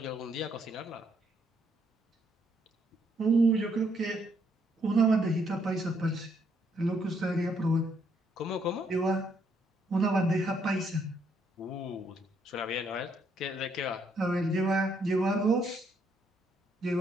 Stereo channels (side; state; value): both; normal; correlation 0.72